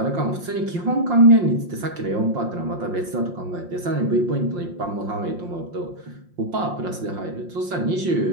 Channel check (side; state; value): left; late; 5.7 ms